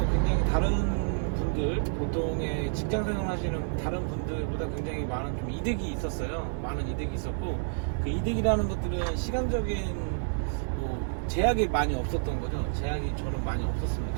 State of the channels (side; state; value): left; silent; digital silence